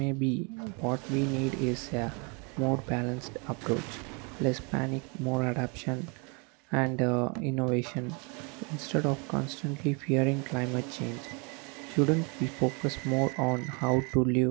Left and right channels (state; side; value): quieter; left; 32.9 dB